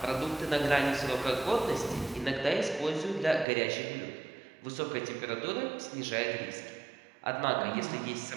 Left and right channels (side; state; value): left; drops out; at 3.5 s